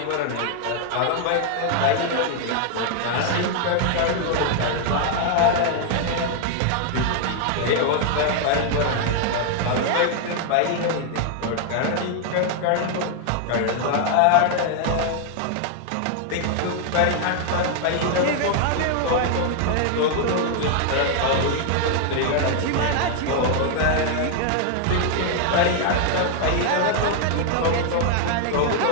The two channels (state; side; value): different; both; correlation 0.00